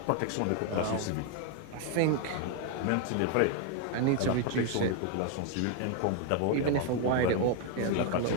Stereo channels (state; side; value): different; both; correlation 0.00